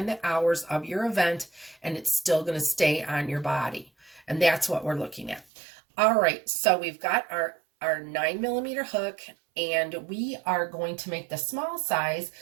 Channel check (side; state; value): left; drops out; at 5.5 s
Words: the hours of your event, and it's still gonna stay on your body. And that's what we're looking at. All right, so we've got our 9mm hook, and we are going to make the small size.